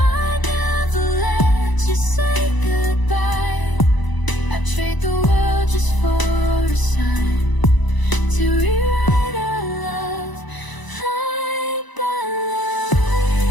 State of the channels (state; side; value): late; right; 1.0 ms